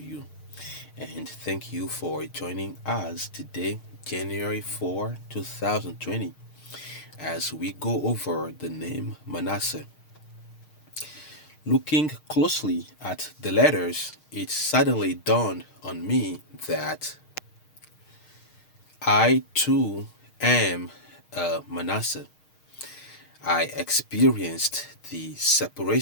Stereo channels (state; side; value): late; right; 6.5 ms